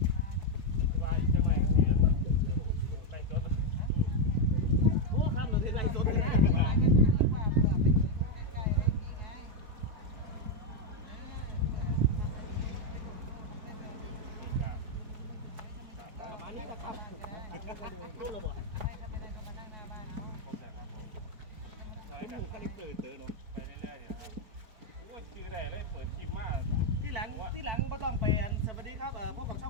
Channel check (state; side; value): late; left; 4.6 ms